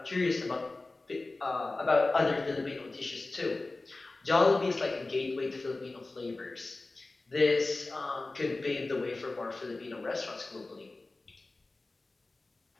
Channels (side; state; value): right; quieter; 3.2 dB